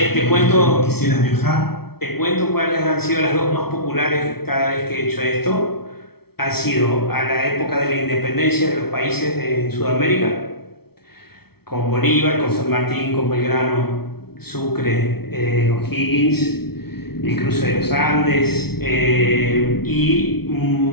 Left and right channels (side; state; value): right; late; 0.95 ms